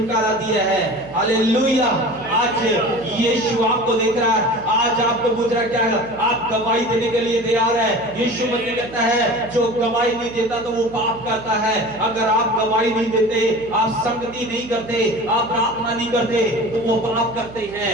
दिया है। हालेलुया। आज यीशु आपको देख रहा है, आज आपको पूछ रहा है क्या आप गवाही देने के लिए तैयार है? यीशु मसीह कहता है जो गवाही नहीं देता तो वो पाप करता है। अगर आप गवाही नहीं देते, आप संगति नहीं करते, आप प्रार्थना नहीं करते तो वो पाप करते हैं।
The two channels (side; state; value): right; noise; hum, 18 dB below the sound